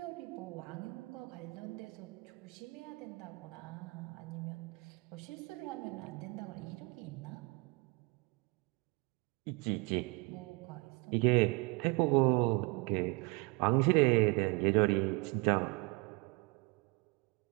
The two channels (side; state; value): left; quieter; 27.2 dB